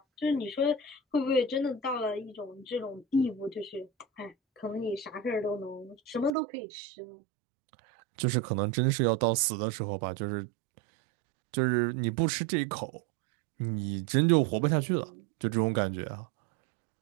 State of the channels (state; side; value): drops out; left; at 6.3 s